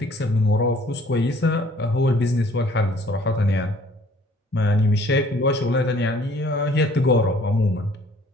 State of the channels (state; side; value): normal; both; correlation 0.57